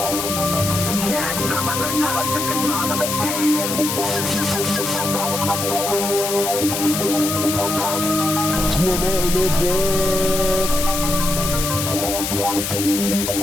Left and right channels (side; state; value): left; noise; hiss, 3 dB below the sound